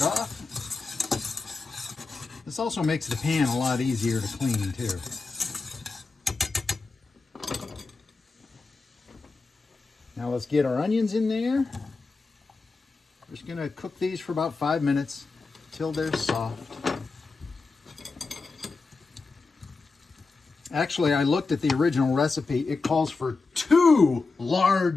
off. This also makes the pan a lot easier to clean, too. Now let's get our onions in there. We're just gonna cook these for about 5 minutes till they're soft. Actually, I looked at the original recipe. It calls for 2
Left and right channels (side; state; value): right; quieter; 4.0 dB